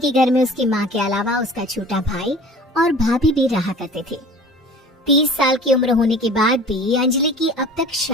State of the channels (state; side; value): normal; both; correlation 0.43